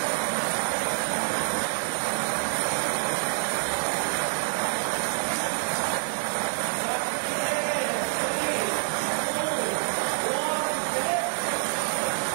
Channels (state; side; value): silent; left; 58 dB below the other